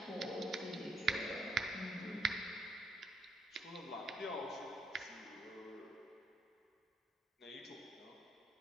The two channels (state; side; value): normal; both; correlation 0.74